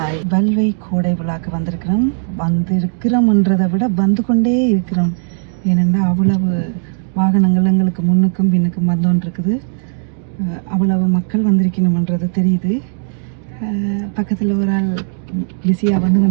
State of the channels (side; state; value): left; silent; digital silence